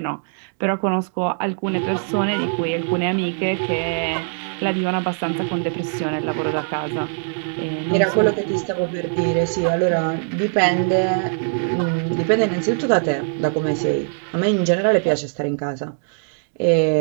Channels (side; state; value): left; silent; 65 dB below the other